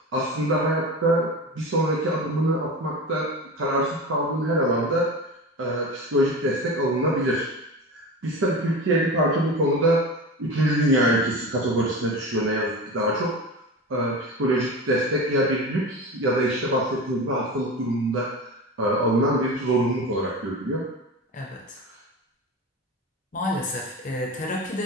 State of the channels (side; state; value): both; normal; correlation 0.29